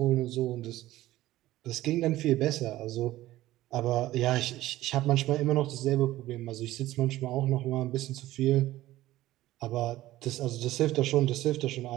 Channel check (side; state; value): left; quieter; 15.8 dB